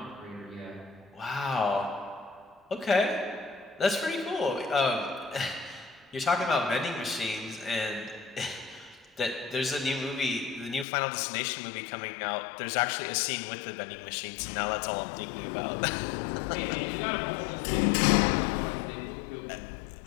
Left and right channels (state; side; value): drops out; right; at 10.9 s